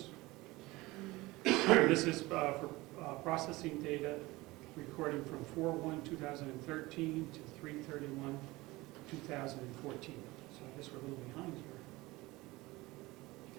This is for processing data, recording from 4/1/2013 to 3/31/2014. So I guess we're a little behind here.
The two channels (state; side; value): quieter; left; 20.7 dB